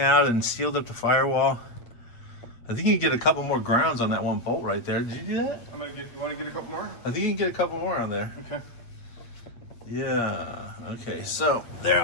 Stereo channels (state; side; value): late; right; 8.4 ms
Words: and sealed up the firewall. I think you can get a couple more grounds on that one bolt right there. Did you do that? I'm gonna get. You want to get a couple more? I think you can get a couple more on there. Okay. Yeah, okay, so there